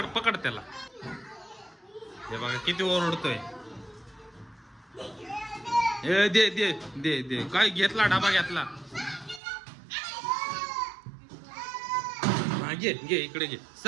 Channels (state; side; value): drops out; left; at 9.4 s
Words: पकड त्याला. हे बघा किती ओरडतोय. दे काय घेतला डबा घेतला. हा घे घे इकडे घे